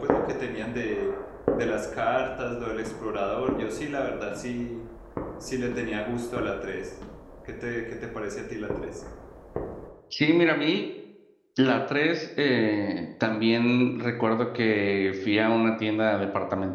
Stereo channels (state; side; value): identical; both; correlation 1.00